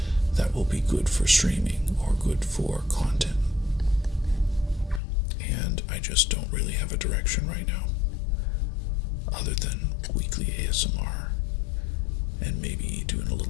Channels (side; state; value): right; drops out; at 5.0 s